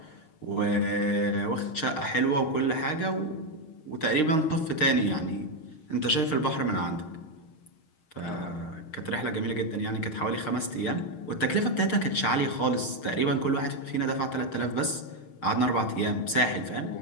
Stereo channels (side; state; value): right; late; 6.4 ms